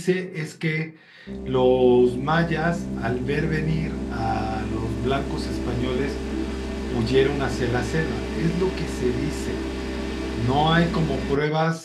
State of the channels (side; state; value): both; identical; correlation 1.00